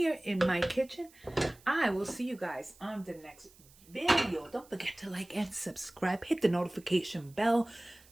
in my kitchen. I will see you guys on the next video. Don't forget to like and subscribe. Hit the notification bell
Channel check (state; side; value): noise; right; hiss, 26 dB below the sound